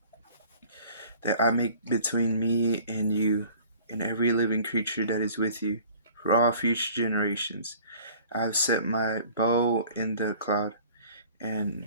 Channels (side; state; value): both; inverted; correlation -0.50